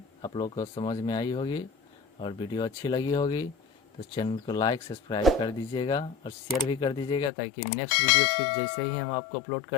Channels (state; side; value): drops out; right; at 7.3 s